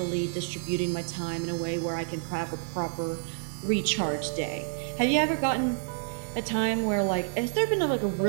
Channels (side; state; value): left; silent; 59 dB below the other